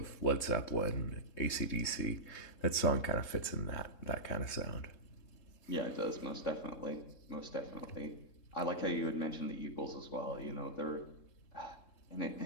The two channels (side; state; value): right; late; 3.7 ms